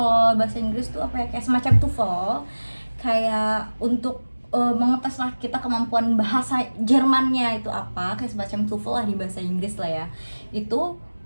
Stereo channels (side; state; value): both; inverted; correlation -1.00